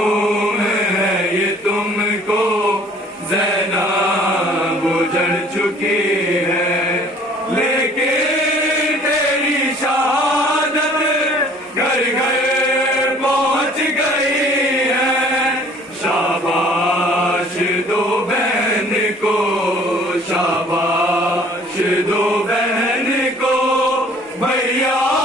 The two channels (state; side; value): normal; both; correlation 0.53